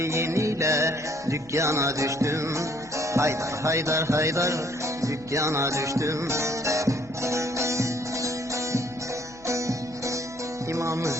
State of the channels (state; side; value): noise; left; hum, 23 dB below the sound